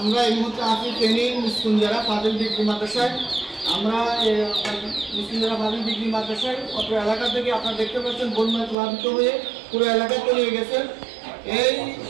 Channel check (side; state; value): left; drops out; at 8.8 s